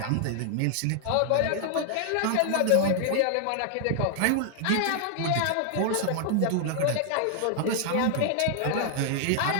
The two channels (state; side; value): different; both; correlation 0.00